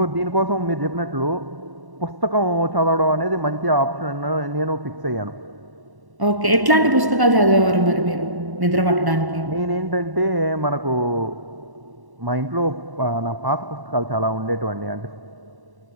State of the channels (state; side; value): late; left; 1.1 ms